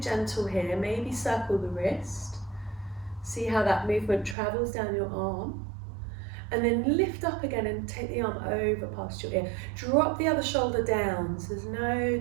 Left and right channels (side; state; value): left; drops out; at 4.4 s